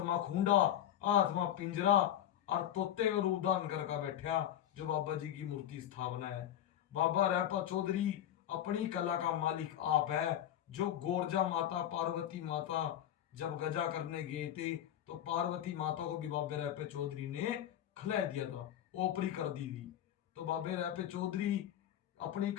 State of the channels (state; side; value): quieter; right; 11.2 dB